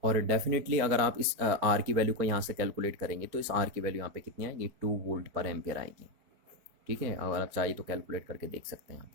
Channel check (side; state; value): left; late; 4.5 ms